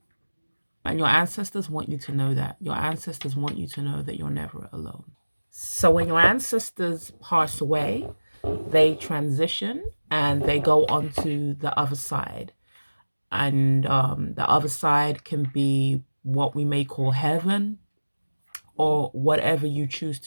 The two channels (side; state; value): both; inverted; correlation -1.00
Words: And your ancestors want you to know that. Your ancestors want you to know that you're never alone. So when your ancestors pass away, they transition and they go on to the other side. And the other side can be what we may call heaven, or whatever you choose